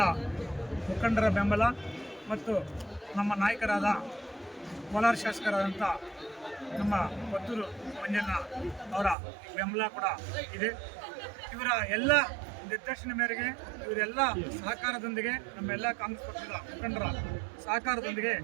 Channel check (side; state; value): left; drops out; at 9.2 s